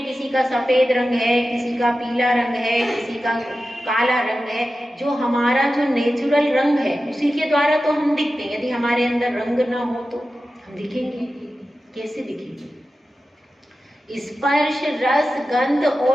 किसी का सफेद रंग है, किसी का पीला रंग है, किसी का काला रंग है। जो हमारा जो नेचुरल रंग है उसी के द्वारा तो हम दिखते हैं। यदि हमारे अंदर रंग ना हो तो हम दिखेंगे कैसे? दिखेंगे। स्पर्श, रस, गंध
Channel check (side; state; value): both; normal; correlation 0.93